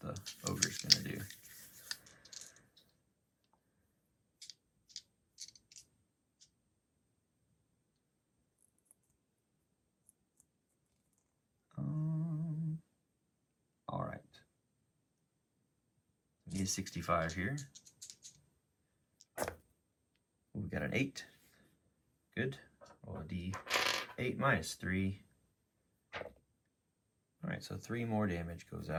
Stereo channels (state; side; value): identical; both; correlation 1.00